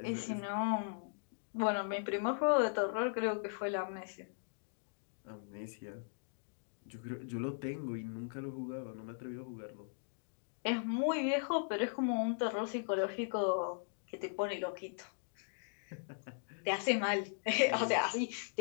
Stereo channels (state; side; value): silent; right; digital silence